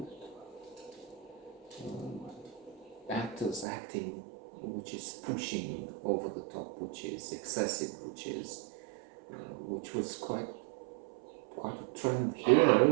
actors acting which is pushing over the top, which is excessive, which was quite a trend here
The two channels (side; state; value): left; drops out; at 3.7 s